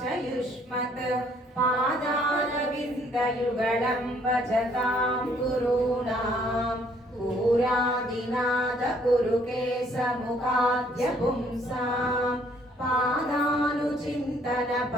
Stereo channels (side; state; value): both; normal; correlation 0.64